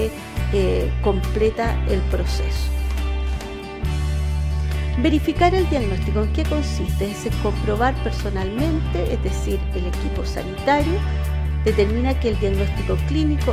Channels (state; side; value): identical; both; correlation 1.00